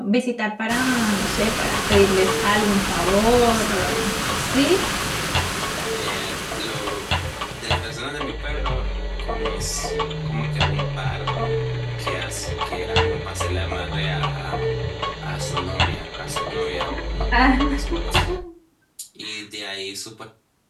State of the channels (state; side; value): identical; both; correlation 1.00